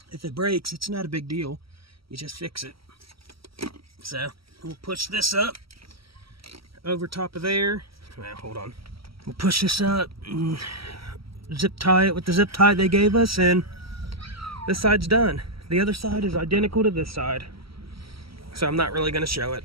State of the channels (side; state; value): left; late; 0.75 ms